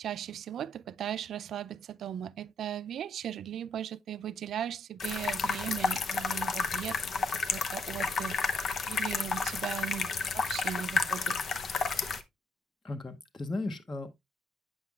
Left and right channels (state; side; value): normal; both; correlation 0.71